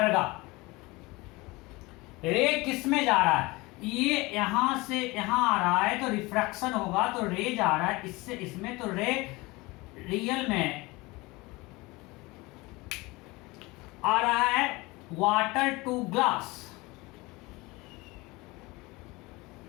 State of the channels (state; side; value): quieter; right; 23.0 dB